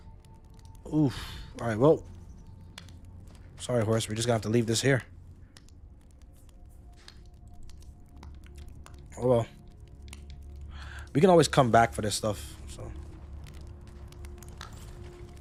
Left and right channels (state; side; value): identical; both; correlation 1.00